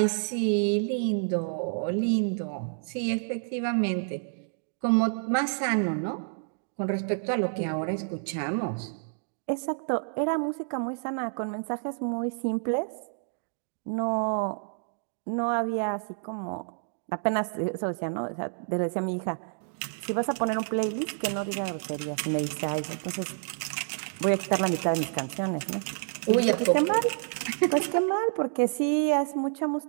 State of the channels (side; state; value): left; silent; digital silence